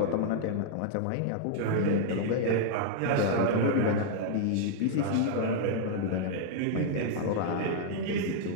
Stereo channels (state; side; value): different; both; correlation -0.01